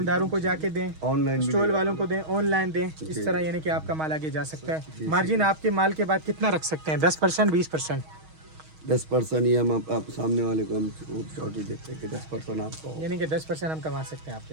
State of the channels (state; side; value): late; left; 6.3 ms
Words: को जाके दें, ऑनलाइन स्टॉल वालों को दें, ऑनलाइन दें, इस तरह यानी कि आपका माल आगे जा सकता है। मार्जिन आपके माल के बाद कितना रख सकते हैं? 10%, 20%? 10% ही हम आप सामने वाले को हम शॉर्ट ही देते हैं कि 10% आपको, यानी कि 10% हम कमा सकते हैं